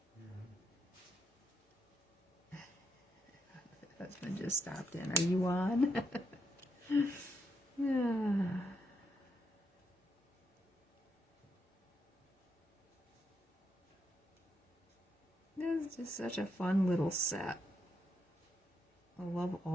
Husband just stopped in. Are you on? Yeah. This is just such a fun little set. I love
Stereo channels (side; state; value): both; normal; correlation 0.80